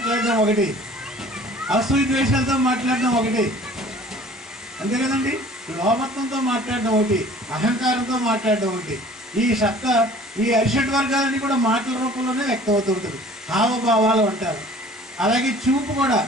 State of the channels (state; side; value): normal; both; correlation 0.49